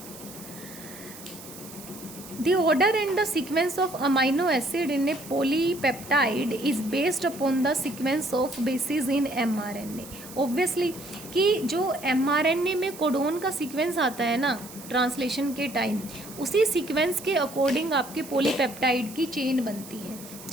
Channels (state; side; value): noise; right; hiss, 16 dB below the sound